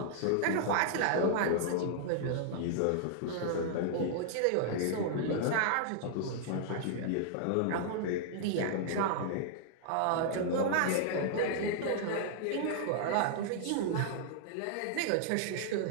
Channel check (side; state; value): both; different; correlation -0.01